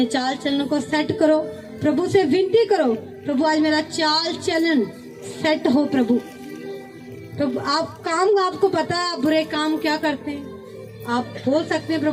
चाल चलन को सेट करो। प्रभु से विनती करो, प्रभु आज मेरा चाल चलन सेट हो। प्रभु आप काम, आपको पता है आप बुरे काम क्या करते हैं, आप बोल सकते हैं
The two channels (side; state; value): both; identical; correlation 1.00